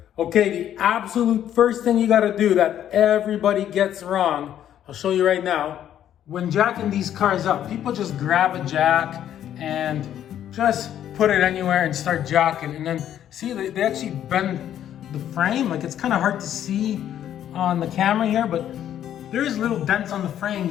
Okay, the absolute first thing you gotta do that everybody gets wrong, I'll show you right now. When jacking these cars up, people just grab a jack and just put it anywhere and start jacking. And then see, they actually bend the frame. Like, it's kind of hard to see on the camera here, but there's little dents on the frame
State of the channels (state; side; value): quieter; right; 10.7 dB